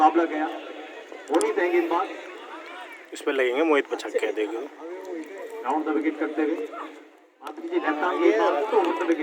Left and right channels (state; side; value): identical; both; correlation 1.00